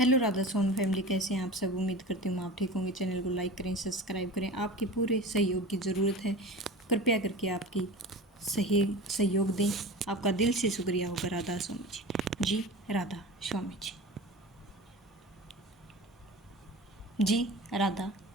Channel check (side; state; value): both; normal; correlation 0.34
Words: राधा सोन फैमिली, कैसे हैं आप सब। उम्मीद करती हूँ आप ठीक होंगे। चैनल को लाइक करें, सब्सक्राइब करें। आपके पूरे सहयोग की ज़रूरत है, कृपया करके आपकी सही सहयोग दें। आपका दिल से शुक्रिया होगा। राधा स्वामी जी, राधा स्वामी जी, राधा